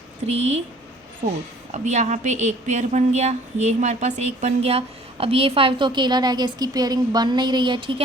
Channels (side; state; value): both; normal; correlation 0.53